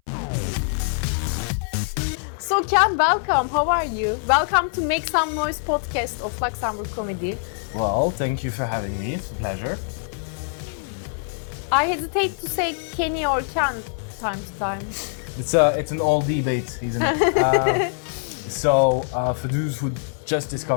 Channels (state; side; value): silent; right; 60 dB below the other